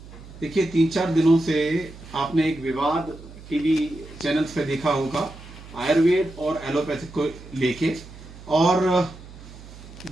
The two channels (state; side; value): noise; right; hum, 17 dB below the sound